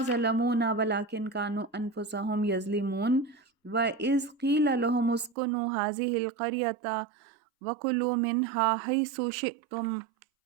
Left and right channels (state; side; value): drops out; left; at 5.4 s